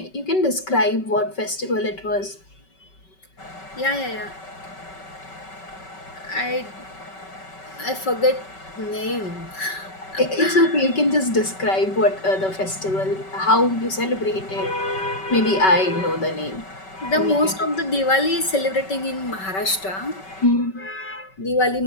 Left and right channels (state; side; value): late; right; 5.3 ms